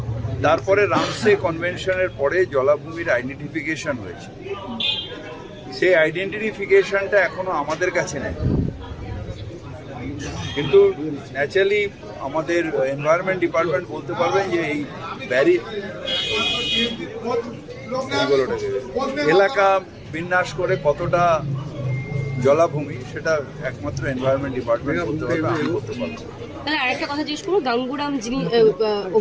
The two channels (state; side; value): identical; both; correlation 1.00